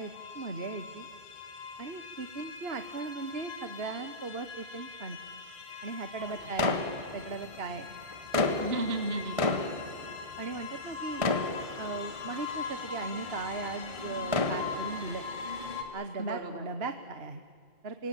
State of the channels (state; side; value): late; left; 1.6 ms